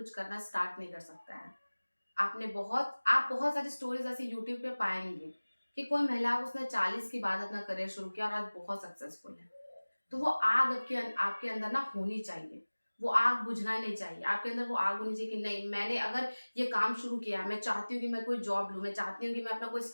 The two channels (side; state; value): both; inverted; correlation -1.00